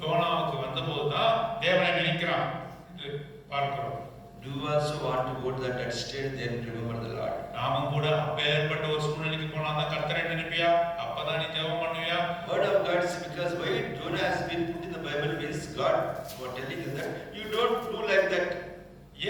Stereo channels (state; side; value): identical; both; correlation 1.00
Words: யோனாவுக்கு வந்தபோது தான் தேவனை நினைக்கிறான் என்று பார்க்கிறோம். Do you also want to go to that state, then remember the Lord? நாமும் கூட அப்பேற்பட்ட ஒரு சூழ்நிலைக்கு போனா தான் கர்த்தரை நினைப்பியா, அப்பதான் நீ ஜெபம் பண்ணுவியா? Word of God is because why Jonah has been put in the Bible means God was telling us that you don't do like that.